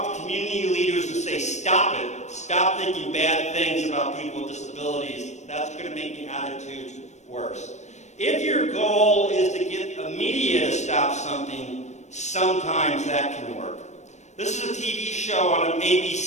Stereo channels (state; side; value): late; right; 0.34 ms